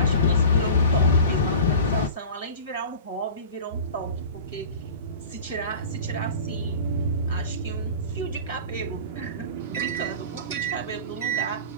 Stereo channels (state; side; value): inverted; both; correlation -0.36